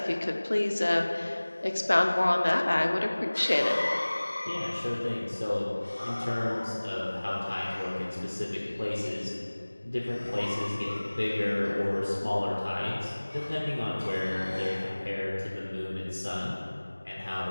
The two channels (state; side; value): inverted; both; correlation -1.00